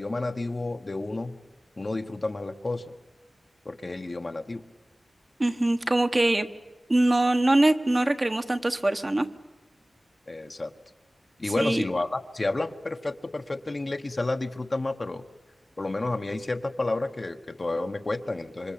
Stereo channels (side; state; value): both; normal; correlation 0.97